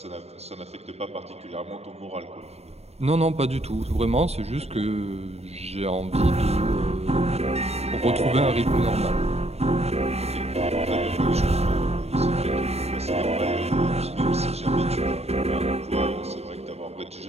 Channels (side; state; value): left; late; 0.30 ms